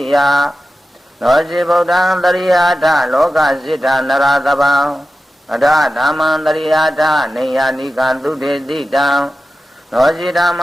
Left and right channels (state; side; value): normal; both; correlation 0.93